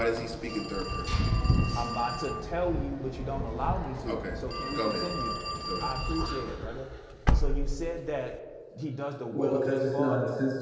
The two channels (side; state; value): both; identical; correlation 1.00